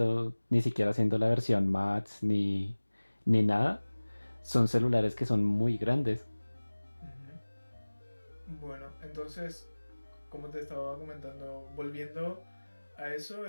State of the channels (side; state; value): both; inverted; correlation -1.00